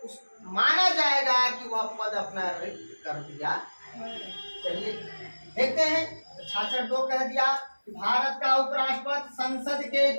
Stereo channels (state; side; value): inverted; both; correlation -1.00